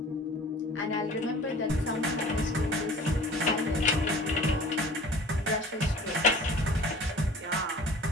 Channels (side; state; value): both; normal; correlation 0.44